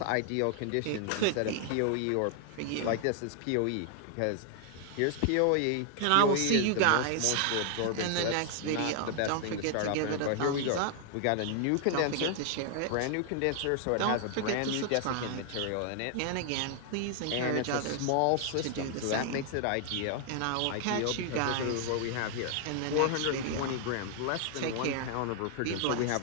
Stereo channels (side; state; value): both; different; correlation 0.00